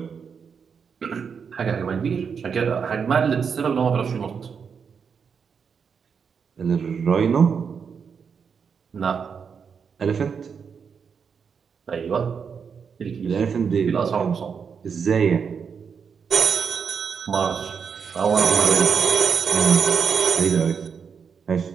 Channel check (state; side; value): quieter; left; 6.4 dB